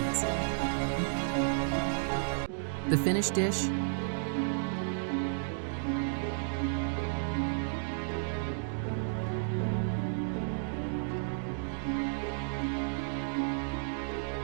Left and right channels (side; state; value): left; silent; digital silence